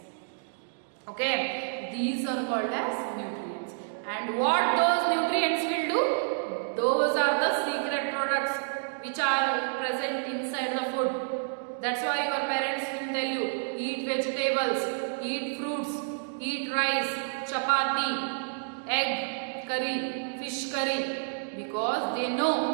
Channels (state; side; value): silent; left; digital silence